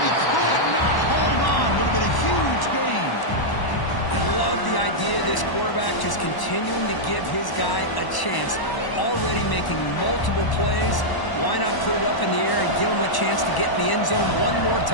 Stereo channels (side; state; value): right; late; 1.0 ms